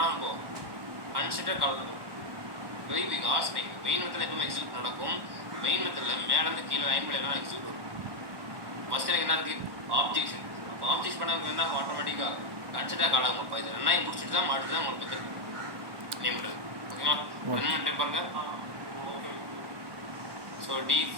போகும் கன்சிடர் கால் பண்ணும். வெரி பிக் ஆஸ் நீங்கள் மெயின் மெத்தடில் எப்பவுமே எக்ஸிக்யூட் நடக்கும். மெயின் மெத்தடில் மேலேருந்து கீழே லைன் பை லைனாக எக்ஸிக்யூட் வரும். ஃபஸ்ட்டு எனக்கு என்ன இருக்குது ஆப்ஜெக்ஷன். அப்போ ஆப்ஜெக்ட் பண்ண என்ன ஆட்டோமேட்டிக்காக கன்சிடர் கால் ஆகும். அப்போ இது ரெண்டாயும் முடிச்சுட்டு தான் மாட்டு தான் உங்களுக்கு மெத்தட் நேம் பண்ணுறது ஓகேங்களா. ரன் பண்ணிட்டு பாருங்க. ஸோ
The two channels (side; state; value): left; late; 1.2 ms